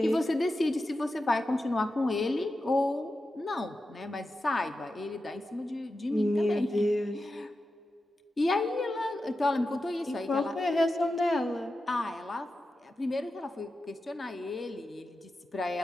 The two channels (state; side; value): normal; both; correlation 0.91